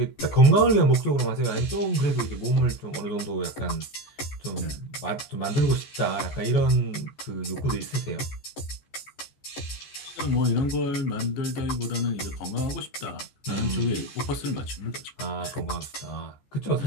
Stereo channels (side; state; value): right; late; 14 ms